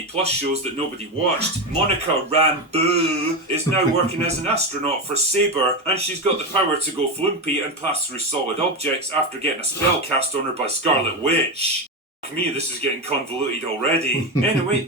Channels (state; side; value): normal; both; correlation 0.15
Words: Plus shows that nobody watched, Monica Rambeau is now working as an astronaut for Saber, and she's got the power to go flumpy and pass through solid objects after getting a spell cast on her by Scarlet Witch. To me, this is getting convoluted already. Anyway,